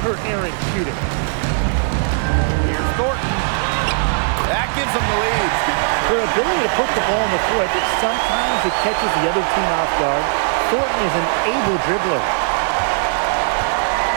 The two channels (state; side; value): silent; left; 63 dB below the other